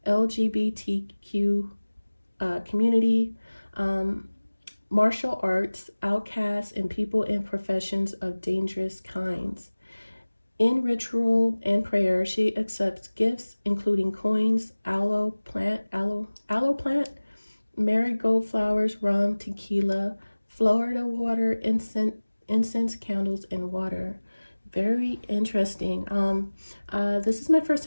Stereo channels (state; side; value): inverted; both; correlation -1.00